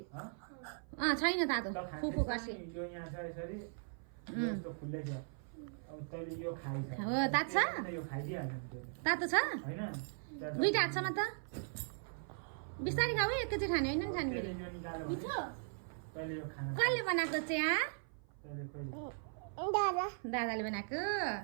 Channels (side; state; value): left; silent; 52 dB below the other